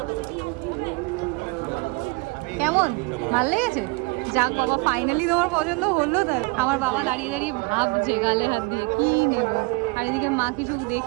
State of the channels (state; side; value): quieter; left; 28.1 dB